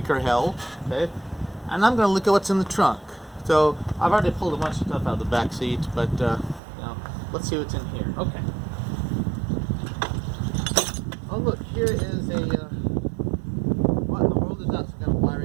hell. Okay, and I'm gonna look at what's in the trunk. So I've already pulled a bunch of stuff out of the back seat, but you know, let's see what's in here. Okay. Oh look, here is a what in the world is that? Some kind of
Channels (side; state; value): left; drops out; at 6.6 s